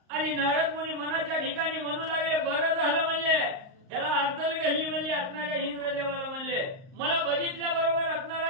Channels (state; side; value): late; left; 38 ms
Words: आणि नारद मुनी मनाच्या ठिकाणी म्हणू लागले बरं झालं म्हणले याला अद्दल गल्ली